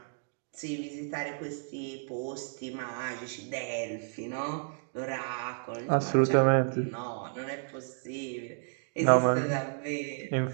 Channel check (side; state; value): left; silent; 57 dB below the other